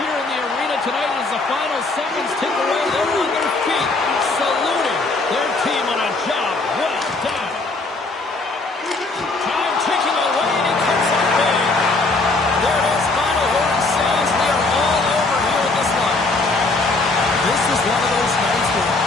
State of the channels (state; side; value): quieter; right; 3.4 dB